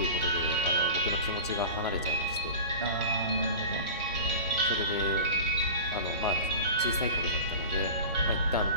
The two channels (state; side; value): inverted; both; correlation -0.35